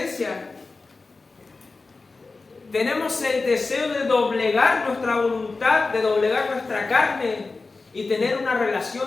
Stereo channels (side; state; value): right; quieter; 3.8 dB